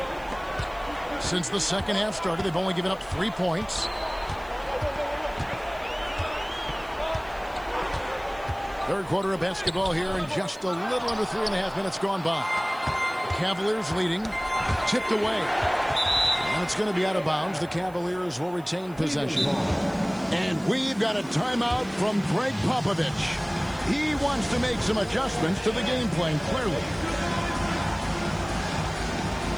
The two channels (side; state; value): right; noise; hiss, 27 dB below the sound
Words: Since the second half started, they've only given up 3 points. Third quarter of basketball here, and just a little under 3.5 minutes gone by. Cavaliers leading, tipped away. And it's going to be out of bounds. The Cavaliers will retain possession. And we've got a timeout from Greg Popovich. He wants to make some adjustments to the game plan, clearly.